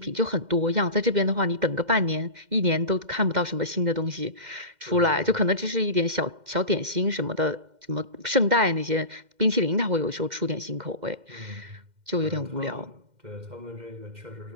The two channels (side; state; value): left; late; 2.1 ms